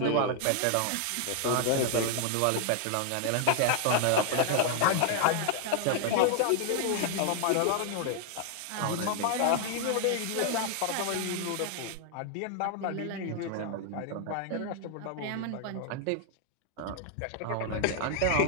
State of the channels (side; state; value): both; different; correlation 0.00